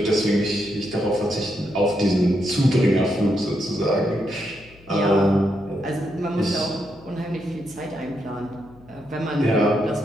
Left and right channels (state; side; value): noise; left; hum, 25 dB below the sound